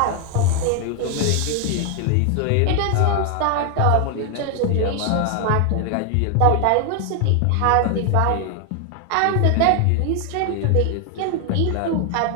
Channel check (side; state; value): both; different; correlation 0.00